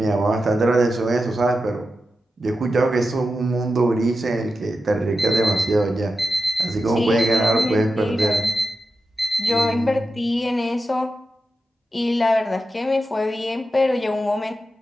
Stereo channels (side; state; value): both; normal; correlation 0.90